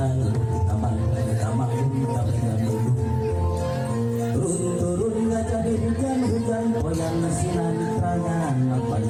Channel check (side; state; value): both; identical; correlation 1.00